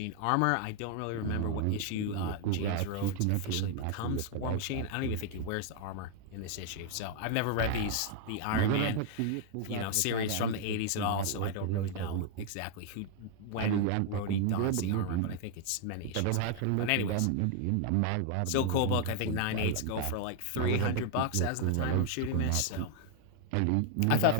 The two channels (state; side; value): different; both; correlation 0.00